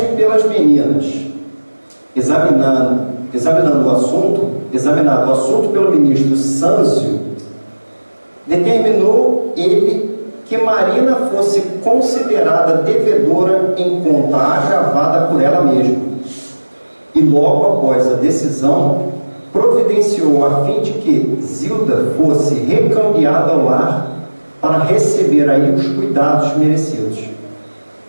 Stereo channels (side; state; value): both; inverted; correlation -1.00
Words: pelas meninas, examinado o assunto pelo ministro Sâncio, determinou ele que Marina fosse considerada devedora em conta agravada por ela mesma, e logo após a decisão providenciou a fim de que Zilda fosse recambiada ao lar para receber aí os cuidados merecidos.